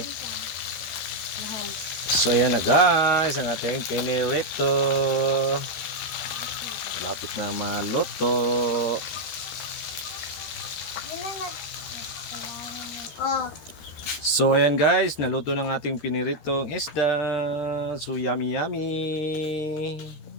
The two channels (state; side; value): late; right; 13 ms